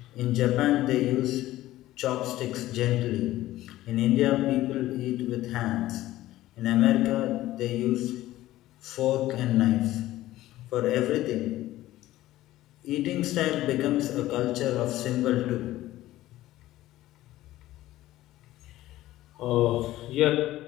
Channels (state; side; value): quieter; right; 15.5 dB